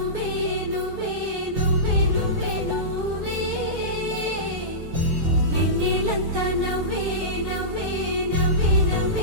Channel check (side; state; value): left; late; 5.9 ms